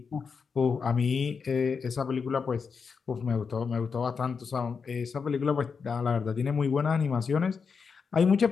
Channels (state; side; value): quieter; right; 5.6 dB